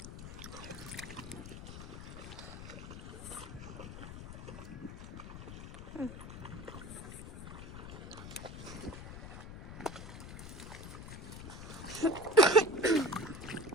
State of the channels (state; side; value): noise; left; rumble, 10 dB below the sound